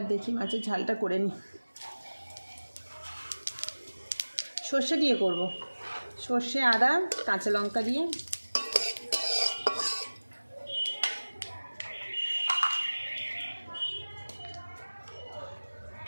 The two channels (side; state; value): both; inverted; correlation -1.00